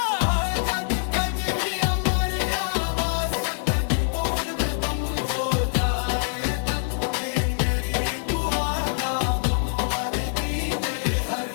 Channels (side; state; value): right; silent; 55 dB below the other